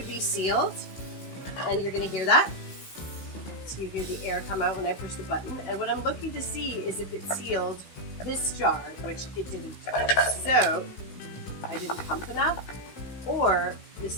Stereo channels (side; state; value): right; late; 16 ms